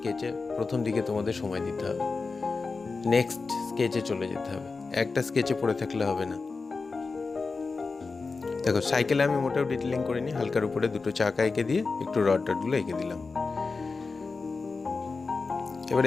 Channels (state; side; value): quieter; right; 4.2 dB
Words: প্রথম দিকে তোমাদের সময় দিতে হবে, নেক্সট স্কেচে চলে যেতে হবে, একটা স্কেচে পড়ে থাকলে হবে না। দেখো সাইকেলে আমি মোটেও ডিটেলিং করিনি, হালকার উপরে দুটো চাকা এঁকে দিয়ে একটু রড টডগুলো এঁকে দিলাম। এবার